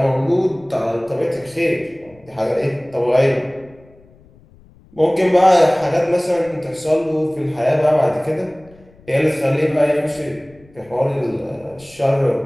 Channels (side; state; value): left; noise; rumble, 27 dB below the sound